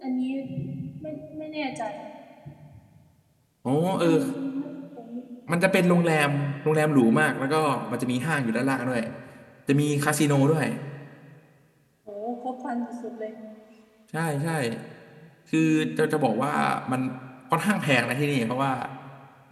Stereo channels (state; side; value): identical; both; correlation 1.00